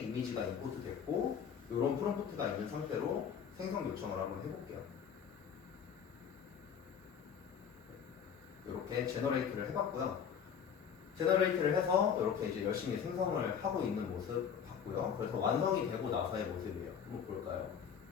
이미지가 임포트 됐고 이런 프롬프트가 있는 상태로 생성 요청을 한번 해볼게요. 이렇게 제너레이트를 해봤고요. 제너레이트를 해서 이렇게 이제 열심히 생성을 하고 있는 모습 봤고요. 그래서 완성이 되고 나서의 모습이에요. 한번 볼까요?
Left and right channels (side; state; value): right; quieter; 7.6 dB